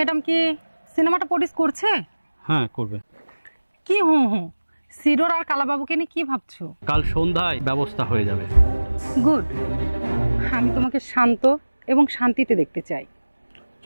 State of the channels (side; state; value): both; inverted; correlation -1.00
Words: কি সিনেমাটা প্রডিউস করছে? হ্যাঁ করবে। কি হুঁ হুঁ, সিডোর আর কালাবাবুকে নিয়ে কি ভাবছো? কাল সন্ধ্যায় ব্যবস্থা হয়ে যাবে। গুড। আমি তোমাকে শান্ত এবং শান্তিতে দেখতে চাই।